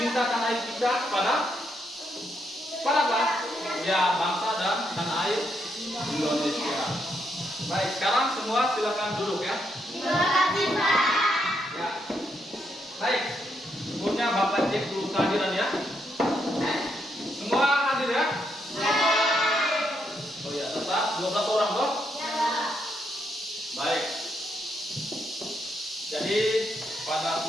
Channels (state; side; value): normal; both; correlation 0.78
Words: tanah air kita kepada apa? Ya, bangsa dan tanah air Indonesia. Baik, sekarang semua silakan duduk ya. Terima kasih, Pak. Ya. Baik, sebelumnya Bapak cek dulu kehadiran ya. Semua hadir ya? Oh ya, tetap 12 orang toh? Baik. Jadi pada